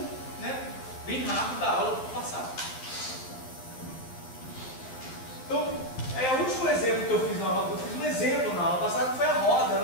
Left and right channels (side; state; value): right; late; 11 ms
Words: né, bem rápido da aula passada. Então, o último exemplo que eu fiz na aula, um exemplo na aula passada, que foi a roda